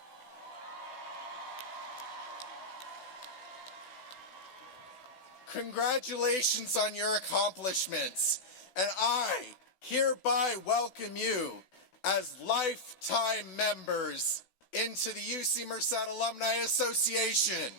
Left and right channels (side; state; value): right; late; 16 ms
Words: Congratulations on your accomplishments, and I hereby welcome you as lifetime members into the UC Merced Alumni Association.